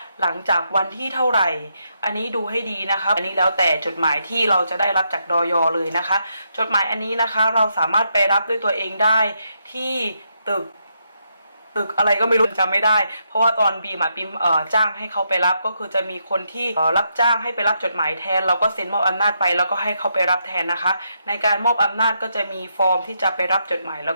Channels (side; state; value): both; inverted; correlation -0.80